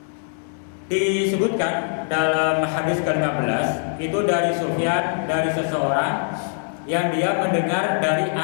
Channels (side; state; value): right; silent; digital silence